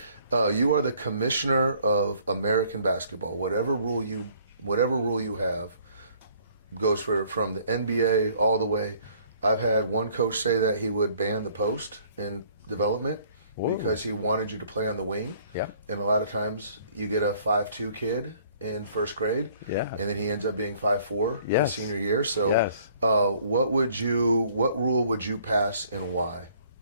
You are the commissioner of American basketball. Whatever rule you have goes from the NBA all the way. I've had one coach say that he would ban the post in development because he wanted you to play on the wing. Yeah. And a lot of times you get a 5'2" kid in first grade, and then he ends up being 5'4" his senior year. So, what rule would you pass and why?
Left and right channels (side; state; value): both; inverted; correlation -0.59